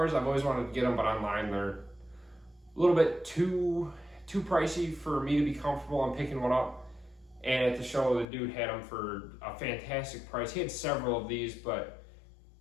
I've always wanted to get them, but online they're a little bit too pricey for me to be comfortable on picking one up. And at the show, the dude had them for a fantastic price. He had several of these, but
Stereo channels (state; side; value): drops out; right; at 8.2 s